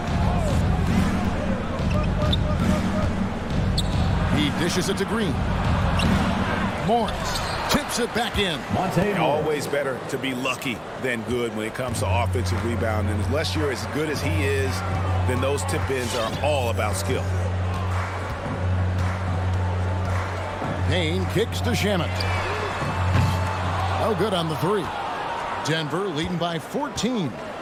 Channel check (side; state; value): both; identical; correlation 1.00